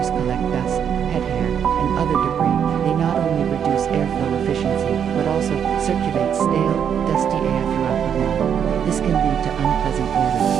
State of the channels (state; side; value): quieter; left; 8.2 dB